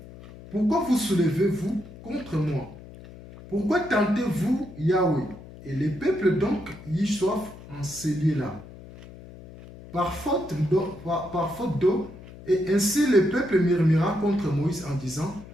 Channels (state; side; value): noise; left; hum, 17 dB below the sound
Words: pourquoi vous soulevez-vous contre moi? Pourquoi tentez-vous Yahweh? Et le peuple donc y soif en ce lieu-là, par faute d'eau. Et ainsi le peuple murmura contre Moïse en disant: